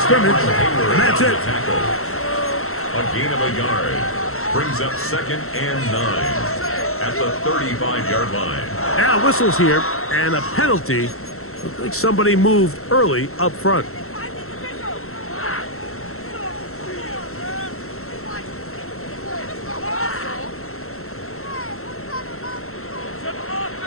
scrimmage, and that's it. A gain of a yard. Brings up 2nd and 9. at the 35-yard line. Now whistles here, and a penalty. Looked like somebody moved early up front.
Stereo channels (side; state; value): right; late; 0.63 ms